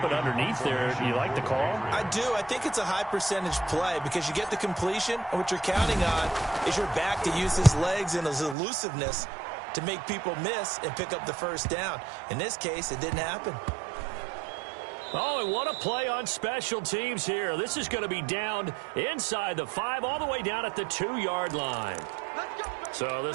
it underneath there. You like the call? I do. I think it's a high percentage play because you get the completion, and what you're counting on is your back to use his legs and his elusiveness to make people miss and pick up the first down. In this case, it didn't happen. Oh, and what a play on special teams here. This is going to be down inside the 5, all the way down at the 2-yard line. So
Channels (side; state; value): left; drops out; at 8.6 s